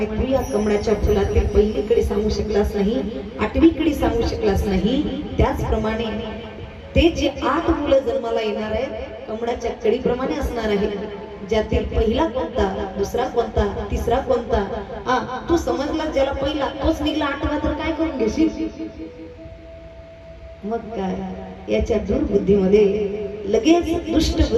तू या कमळाच्या फुलातील पहिली कडी सांगू शकलास नाही आठवी कडी सांगू शकलास नाही त्याचप्रमाणे ते जे 8 मुलं जन्माला येणार आहे कमळाच्या कडीप्रमाणे असणार आहे ज्यातील पहिला कोणता दुसरा कोणता तिसरा कोणता तू समजला ज्याला पहिला तोच निघला 8वा तर काय करून घेशील मग काय याच्या दुर्बुद्धीमध्ये लगेच दुष्ट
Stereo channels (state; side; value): identical; both; correlation 1.00